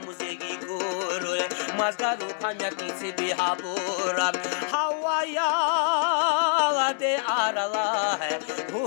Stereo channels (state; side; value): silent; right; digital silence